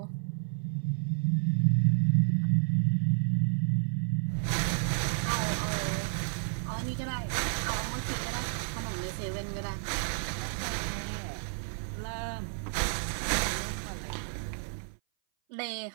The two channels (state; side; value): silent; left; 57 dB below the other